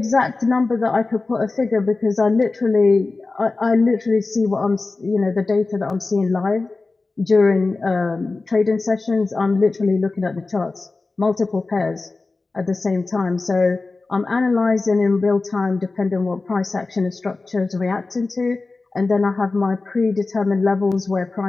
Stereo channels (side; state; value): right; quieter; 3.6 dB